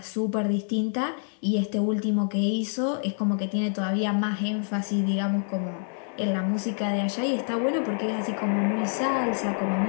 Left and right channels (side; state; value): right; silent; digital silence